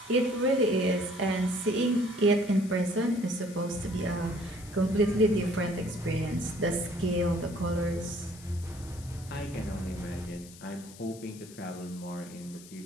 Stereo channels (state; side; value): noise; left; hiss, 19 dB below the sound